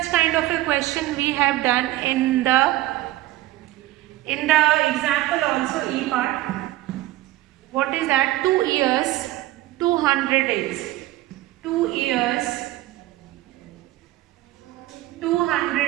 kind of a question we have done in the example also E part. What is that? 2 years 200 days. 2 years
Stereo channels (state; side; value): quieter; left; 16.1 dB